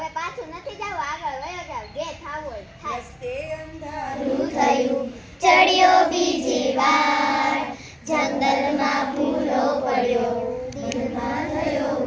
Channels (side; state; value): both; identical; correlation 1.00